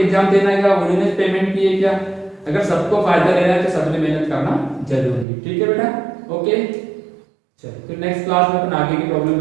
देना है, उन्होंने पेमेंट किए क्या, अगर सबको फायदा लेना है तो सबने मेहनत करना जरूरी है, ठीक है बेटा, ओके। चलो फिर नेक्स्ट क्लास में अपन आगे की प्रॉब्लम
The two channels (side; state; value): left; drops out; at 5.2 s